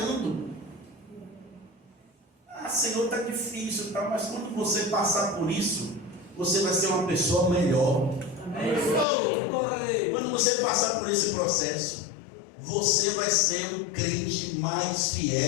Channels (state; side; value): drops out; right; at 9.1 s